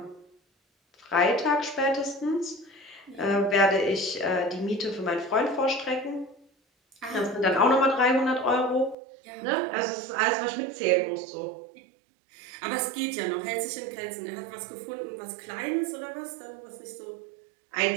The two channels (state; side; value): drops out; left; at 9.0 s